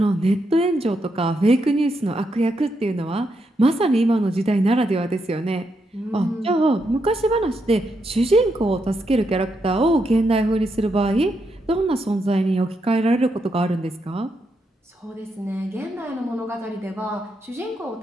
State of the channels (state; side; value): normal; both; correlation 0.81